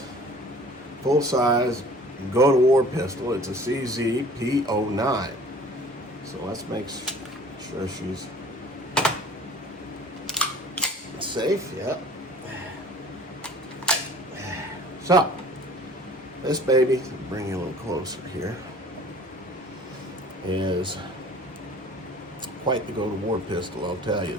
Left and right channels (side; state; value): both; normal; correlation 0.47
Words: full-size go-to-war pistol. It's a CZ P09. So let's make sure she's safe. Yep. So, this baby, bring you a little closer here, is quite the go-to-war pistol, I'll tell you.